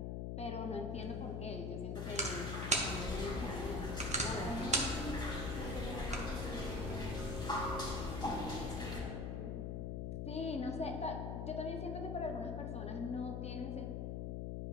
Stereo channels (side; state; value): left; noise; hum, 1 dB below the sound